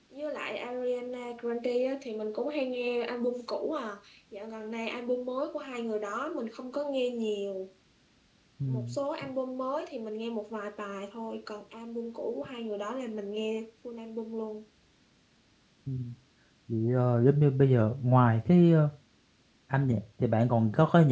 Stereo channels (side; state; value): both; identical; correlation 1.00